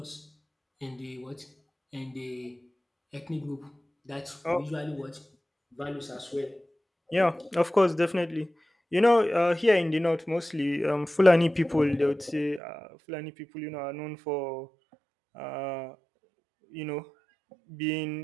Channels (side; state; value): left; drops out; at 12.6 s